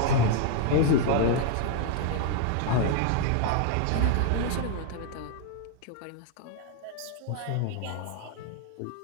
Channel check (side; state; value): both; different; correlation 0.00